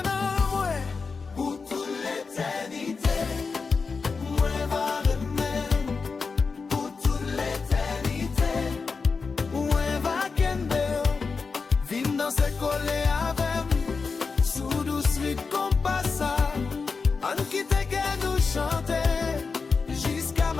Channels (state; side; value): quieter; right; 4.8 dB